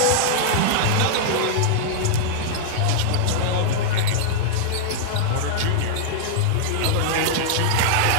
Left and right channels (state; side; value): different; both; correlation -0.01